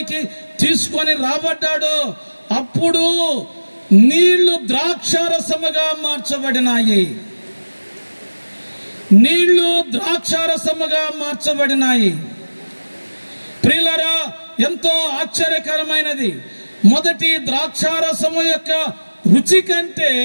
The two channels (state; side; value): inverted; both; correlation -1.00